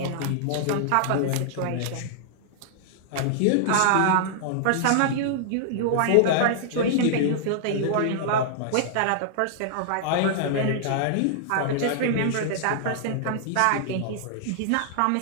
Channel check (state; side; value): different; both; correlation -0.01